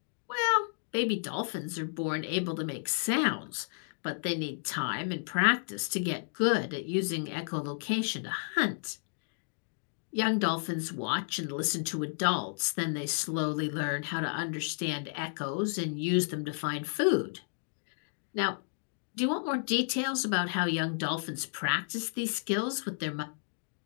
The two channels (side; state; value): right; silent; digital silence